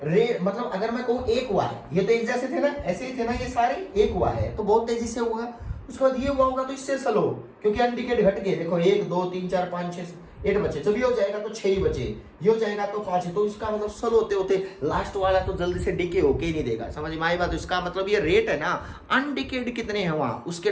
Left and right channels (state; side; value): identical; both; correlation 1.00